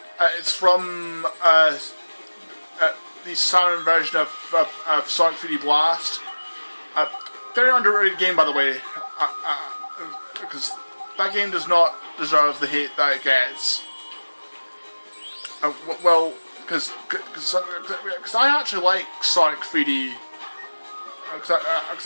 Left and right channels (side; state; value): both; inverted; correlation -1.00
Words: it's from the Saturn version of Sonic 3D Blast. Very underrated game, by the way, because that game does not deserve the hate that it gets. Well, because I actually like Sonic 3D, because